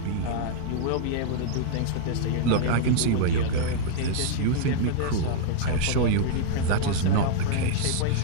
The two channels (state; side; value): different; both; correlation -0.01